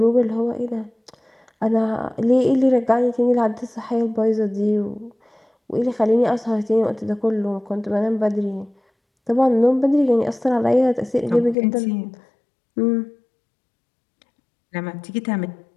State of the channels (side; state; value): right; drops out; at 11.6 s